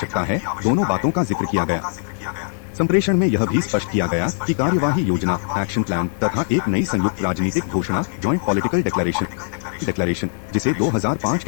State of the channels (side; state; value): right; silent; digital silence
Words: है, दोनों बातों का जिक्र किया गया। संप्रेषण में यह भी स्पष्ट किया गया कि कार्यवाही योजना एक्शन प्लान तथा एक नई संयुक्त राजनीतिक घोषणा जॉइंट पॉलिटिकल डिक्लेरेशन जिसे 2005